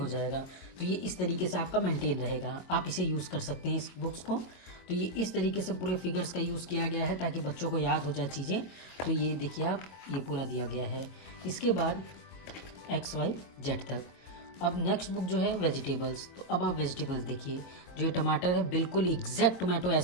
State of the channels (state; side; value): late; right; 22 ms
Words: जाएगा। तो ये इस तरीके से आपका मेंटेन रहेगा, आप इसे यूज़ कर सकते हैं इस बुक्स को। तो ये इस तरीके से पूरे फिगर्स का यूज़ किया गया है ताकि बच्चों को याद हो जाए चीज़ें। तो ये देखिए आप, ये पूरा दिया गया है। इसके बाद XYZ तक। अब नेक्स्ट बुक जो है वेजिटेबल्स। तो अब आप वेजिटेबल्स देखिए, जो टमाटर है बिल्कुल एग्जैक्ट टोमेटो